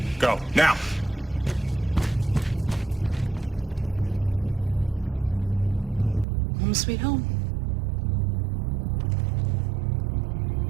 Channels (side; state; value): left; drops out; at 6.2 s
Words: Go, now! Home sweet home.